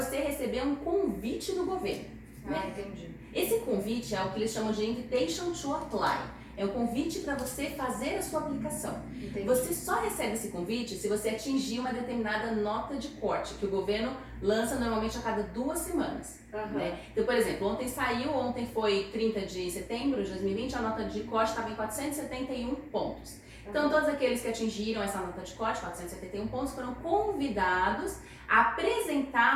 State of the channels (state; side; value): identical; both; correlation 1.00